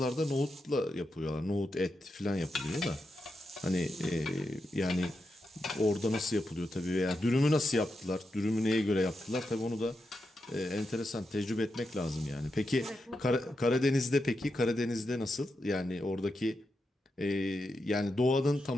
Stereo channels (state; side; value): normal; both; correlation 0.87